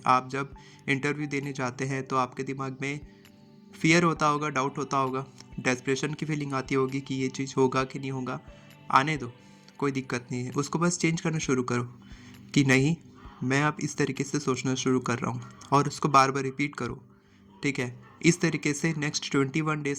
आप जब इंटरव्यू देने जाते हैं तो आपके दिमाग में फियर होता होगा, डाउट होता होगा, डेस्परेशन की फीलिंग आती होगी कि ये चीज़ होगा कि नहीं होगा। आने दो, कोई दिक्कत नहीं है, उसको बस चेंज करना शुरू करो कि नहीं, मैं अब इस तरीके से सोचना शुरू कर रहा हूँ, और उसको बार बार रिपीट करो। ठीक है, इस तरीके से नेक्स्ट 21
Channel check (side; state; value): both; identical; correlation 1.00